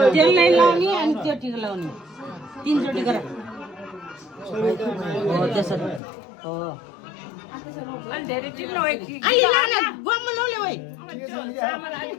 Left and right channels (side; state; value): right; drops out; at 6.0 s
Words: त्यसलाई लाउने अनि त्यो टिका लाउने तीनचोटि गर हो त्यसरी हो अलि लान गम्म नौले भाइ